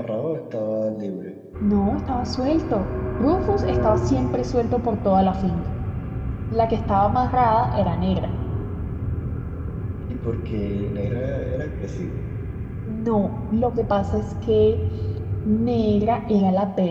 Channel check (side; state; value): both; identical; correlation 1.00